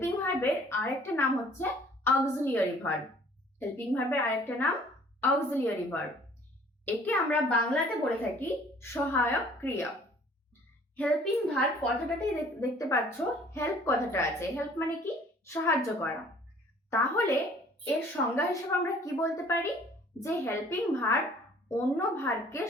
ভার্বের আরেকটা নাম হচ্ছে অক্সিলিয়ারি ভার্ব। হেল্পিং ভার্বের আরেকটা নাম অক্সিলিয়ারি ভার্ব। একে আমরা বাংলাতে বলে থাকি সহায়ক ক্রিয়া। হেল্পিং ভার্ব কথাটাতেই দেখতে পাচ্ছ হেল্প কথাটা আছে। হেল্প মানে কি? সাহায্য করা। তাহলে এর সংজ্ঞা হিসেবে আমরা কি বলতে পারি? যে হেল্পিং ভার্ব অন্য ভার্বকে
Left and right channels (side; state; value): both; normal; correlation 0.54